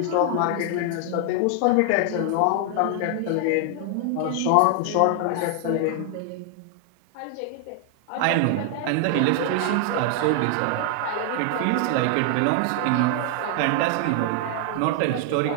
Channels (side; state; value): both; different; correlation 0.00